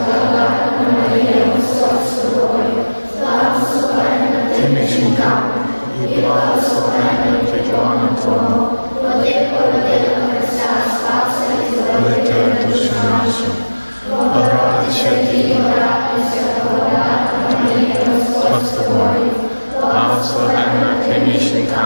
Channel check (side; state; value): both; inverted; correlation -1.00